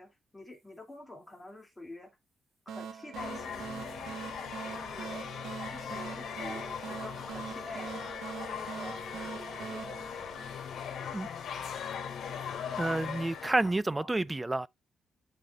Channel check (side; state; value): both; normal; correlation 0.84